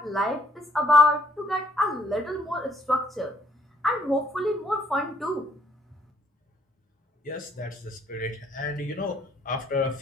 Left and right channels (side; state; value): both; normal; correlation 0.65